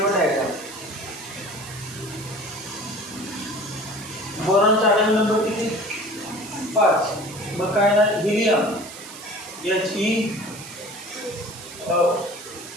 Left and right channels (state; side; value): noise; right; hiss, 14 dB below the sound